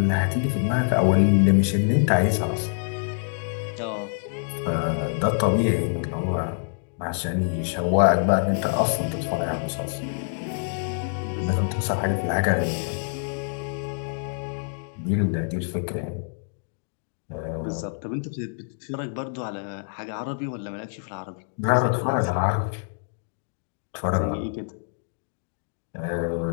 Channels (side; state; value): right; silent; digital silence